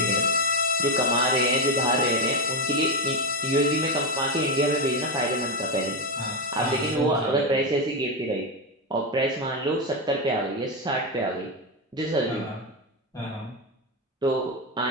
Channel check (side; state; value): both; normal; correlation 0.11